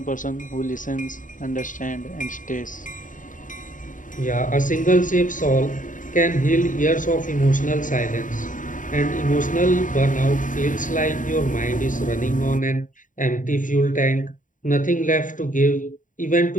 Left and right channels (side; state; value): right; late; 0.38 ms